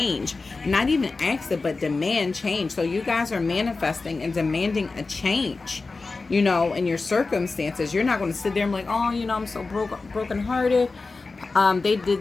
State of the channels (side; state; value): right; quieter; 3.8 dB